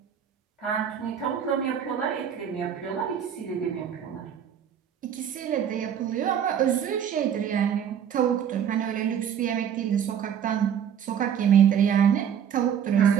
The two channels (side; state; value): left; quieter; 8.6 dB